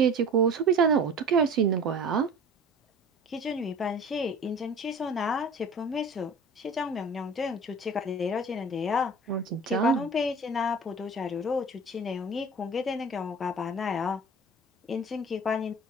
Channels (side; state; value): both; normal; correlation 0.40